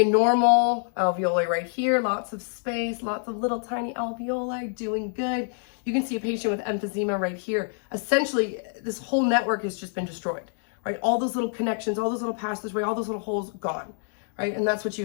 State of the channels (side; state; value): right; silent; 61 dB below the other